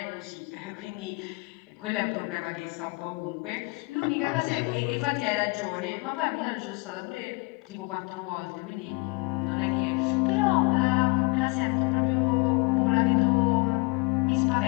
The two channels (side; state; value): right; quieter; 28.0 dB